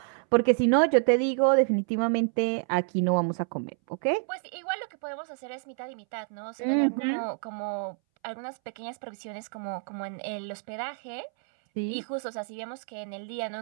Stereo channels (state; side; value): silent; left; 59 dB below the other